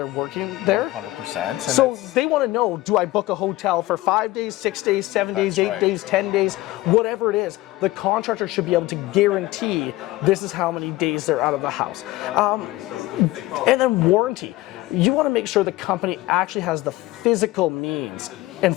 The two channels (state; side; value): quieter; right; 18.2 dB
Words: working there. 100%. So they want to know, do I book a hotel for 5 days, 6 days, 7 days, 8 days, 10 days, whatever it is, the contractor should be able to guarantee this is how many days they're out of the house. And then warranty. You want to make sure the company actually has the physical means and